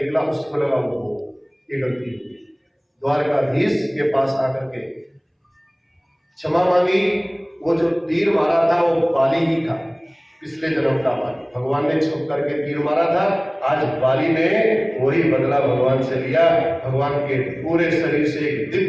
उसको लगा वो ये गलती हो गई। द्वारकाधीश के पास आकर के क्षमा मांगी। वो जो तीर मारा था वो बाली ही था, पिछले जन्म का बाली। भगवान ने छुप करके तीर मारा था, आज बाली ने वही बदला भगवान से लिया। भगवान के पूरे शरीर से एक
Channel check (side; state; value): both; identical; correlation 1.00